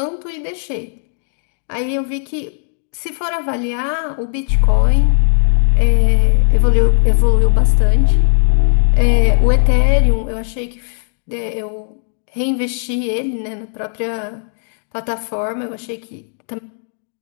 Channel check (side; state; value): right; silent; digital silence